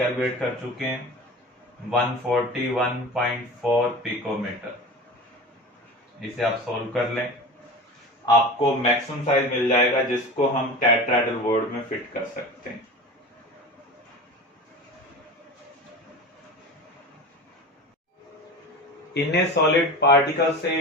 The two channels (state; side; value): normal; both; correlation 0.32